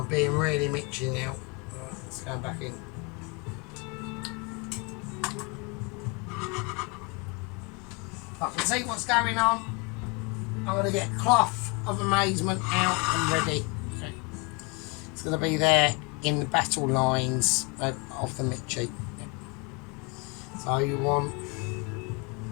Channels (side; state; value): right; quieter; 28.6 dB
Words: being really mitchy now. Right, let's go back in. I can see what's going on. I'm going to get cloth of amazement out and ready. Okay. It's going to be there in the battle lines of the Mitchie. So you want